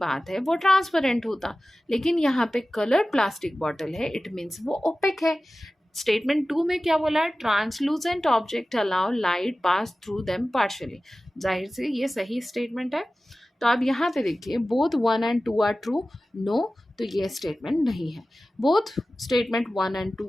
है वो ट्रांसपेरेंट होता, लेकिन यहाँ पे कलर्ड प्लास्टिक बॉटल है, इट मीन्स वो ओपेक है। स्टेटमेंट 2 में क्या बोला है? Translucent object allow light pass through them partially. जाहिर से ये सही स्टेटमेंट है। तो अब यहाँ पे देखिए, both 1 and 2 are true. No, तो ये स्टेटमेंट नहीं है। Both statement 1 and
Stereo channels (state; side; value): normal; both; correlation 0.96